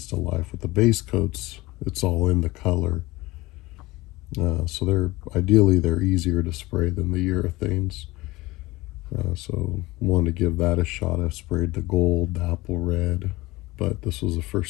to life. With the base coats, it's all in the color. So they're easier to spray than the urethanes. So wanted to give that a shot. I sprayed the gold, the apple red, but this was the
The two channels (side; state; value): right; quieter; 20.5 dB